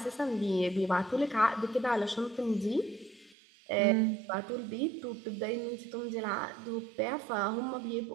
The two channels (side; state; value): left; drops out; at 3.4 s